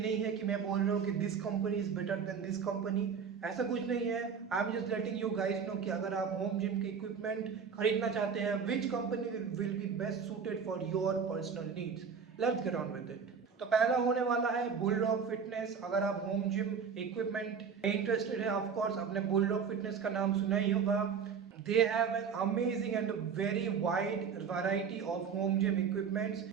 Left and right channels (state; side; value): quieter; left; 6.4 dB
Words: नहीं है कि मैं बोल रहा हूँ कि this company is better than this company. ऐसा कुछ नहीं है। I am just letting you guys know कि अगर आप होम जिम के इक्विपमेंट खरीदना चाहते हैं, which company will be best suited for your personal needs. Let's get on with it. तो पहला होने वाला है बुलडॉग फिटनेस। अगर आप होम जिम इक्विपमेंट में इंटरेस्टेड है, ऑफ कोर्स आपने बुलडॉग फिटनेस का नाम सुना ही होगा। They have an amazing and a very wide variety of home gym equipments.